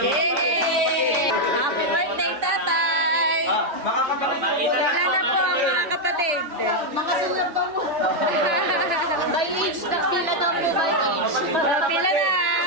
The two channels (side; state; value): left; late; 3.1 ms